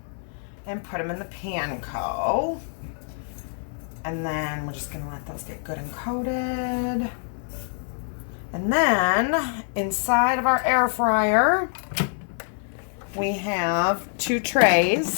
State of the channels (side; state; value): right; silent; 61 dB below the other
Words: and put them in the panko. And then we're just going to let those get good and coated. And then inside of our air fryer, we have 2